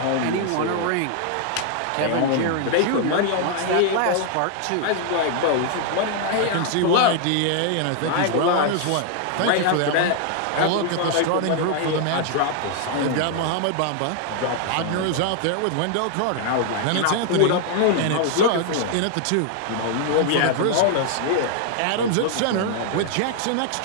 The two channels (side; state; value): both; different; correlation 0.00